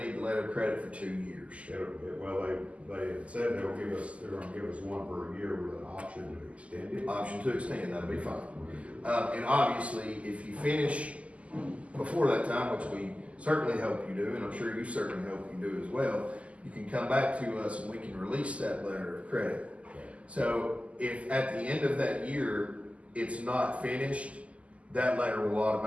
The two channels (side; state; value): left; late; 0.065 ms